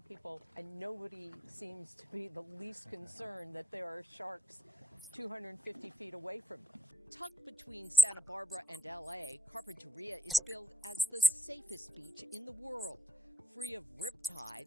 people, and nobody seems to be the least concerned that there are sharks 250 feet away from them. Tucked between Santa Barbara and LA, Carpinteria is billed as the safest beach in the world, free of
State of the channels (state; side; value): normal; both; correlation 0.71